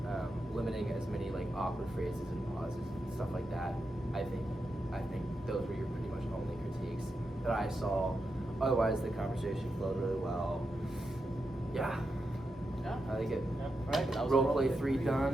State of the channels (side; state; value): both; normal; correlation 0.87